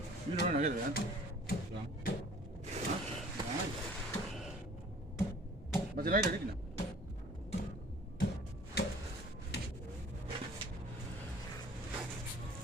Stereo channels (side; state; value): both; normal; correlation 0.50